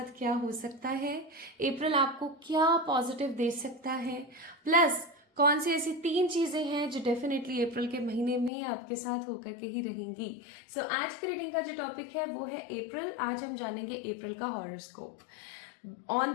क्या हो सकता है, अप्रैल आपको क्या पॉजिटिव दे सकता है, प्लस कौन सी ऐसी 3 चीजें हैं जो डेफिनेटली अप्रैल के महीने में आपके साथ होकर के ही रहेंगी। सो आज की रीडिंग का जो टॉपिक है वो है अप्रैल। आज हम जानेंगे अप्रैल का horoscope on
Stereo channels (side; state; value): right; drops out; at 8.5 s